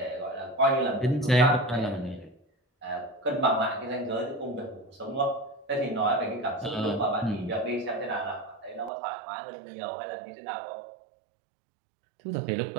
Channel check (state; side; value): drops out; left; at 8.9 s